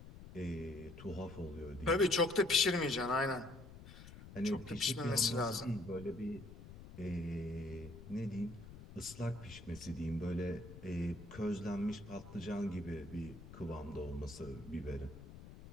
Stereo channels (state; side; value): noise; left; rumble, 15 dB below the sound